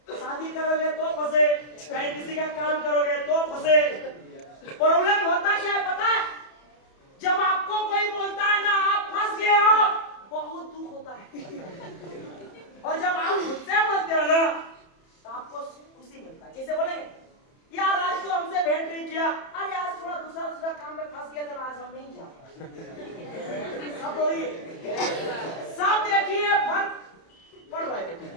शादी करोगे तो फंसे, कहीं किसी का काम करोगे तो फंसे। प्रॉब्लम होता क्या है पता है, जब आपको कोई बोलता है ना आप फंस गए हो, बहुत दुख होता है, और जब आप मुझसे बोलते हो ना तो आपको खुशी मिलता है। जैसे बोलेंगे यार आज तो हमसे भेंट नहीं किया, अरे आज थोड़ा दूसरा काम में फंस गया था ना, आज हम नहीं जा पाए। सब वही सब देखिए फर्क पड़ रहा है।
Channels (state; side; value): late; right; 30 ms